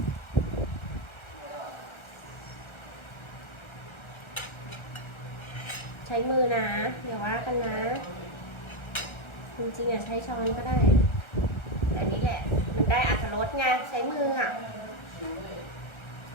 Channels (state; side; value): late; right; 1.3 ms